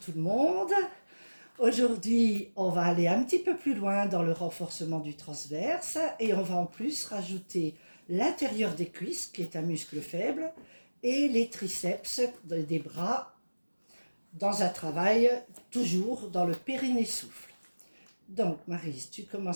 le monde. Aujourd'hui, on va aller un petit peu plus loin dans le renforcement du transverse et on va en plus rajouter l'intérieur des cuisses, qui est un muscle faible, et les triceps des bras dans un travail toujours dans le périnée souffle. Donc Maryse, tu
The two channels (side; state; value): both; inverted; correlation -1.00